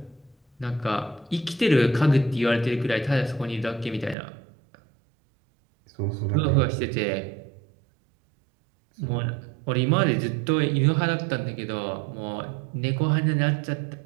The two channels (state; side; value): drops out; left; at 4.2 s